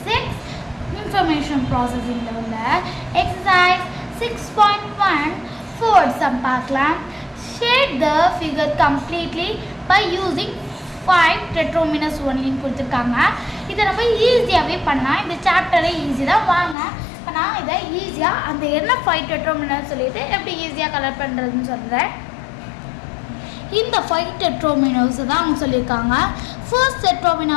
6 Information Processing ல உள்ள Exercise 6.1 Fourth sum பார்க்கலாம். Shade the figure completely by using 5 tetrominus only கொடுத்திருக்காங்க. இதை நம்ம ஈஸியாகவே பண்ணலாம். இந்த சாப்டரை ஈஸி தான். வாங்க இப்போ நான் இதை ஈஸியாக அந்த என்ன 5 டெட்ரோமினஸ் சொல்லிட்டு எப்படி ஈஸியாக கலர் பண்ணுறதுன்னு சொல்கிறேன். இந்த 5 டெட்ரோமினஸ் தான் அவங்க சொல்லியிருக்காங்க. ஃபர்ஸ்ட் டெட்ரோமினா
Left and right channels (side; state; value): right; drops out; at 16.8 s